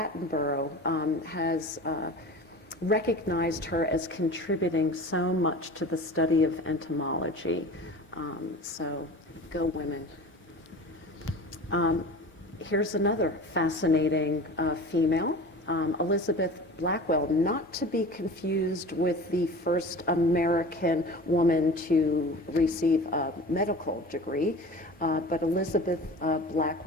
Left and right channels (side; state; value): both; normal; correlation 0.37